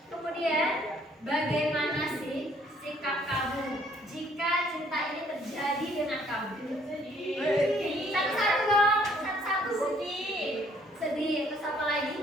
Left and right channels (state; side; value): normal; both; correlation 0.62